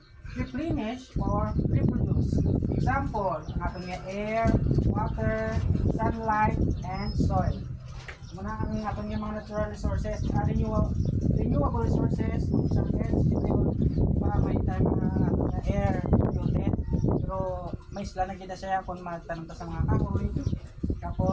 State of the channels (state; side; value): identical; both; correlation 1.00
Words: replenished or reproduced. Example, ang ating air, water, sunlight, and soil. Muna ang ating mga natural resources are renewable renewable resources, isang energy yun, diba may time na air polluted, pero may isla na kita siya kung magtanong ta sa mga kahoy.